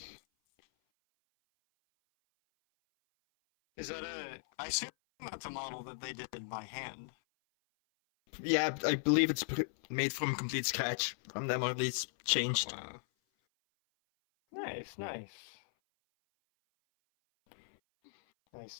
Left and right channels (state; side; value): silent; right; 53 dB below the other